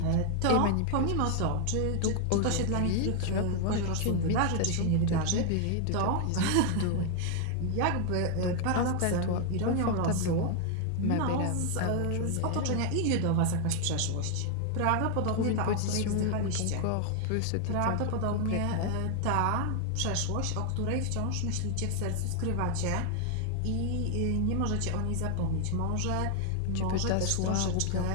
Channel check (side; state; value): both; different; correlation 0.00